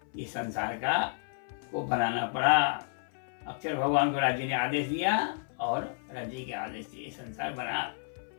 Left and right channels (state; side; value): silent; right; 57 dB below the other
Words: ये संसार का को बनाना पड़ा। अक्षर भगवान को राज्य ने आदेश दिया और राज्य के आदेश से संसार बना।